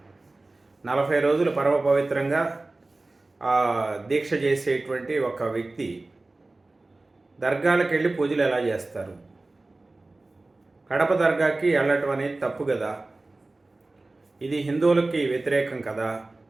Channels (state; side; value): quieter; left; 3.1 dB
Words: 40 రోజులు పరమ పవిత్రంగా దీక్ష చేసేటువంటి ఒక వ్యక్తి దర్గాలకు వెళ్ళి పూజలు ఎలా చేస్తారు? కడప దర్గాకి వెళ్ళటం అనేది తప్పు కదా. ఇది హిందువులకి వ్యతిరేకం కదా,